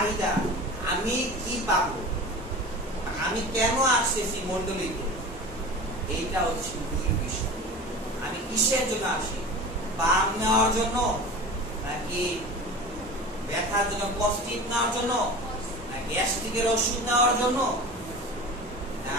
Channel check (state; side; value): normal; both; correlation 0.34